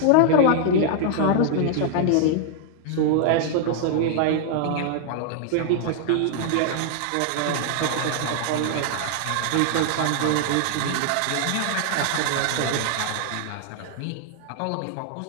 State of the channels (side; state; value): both; different; correlation 0.00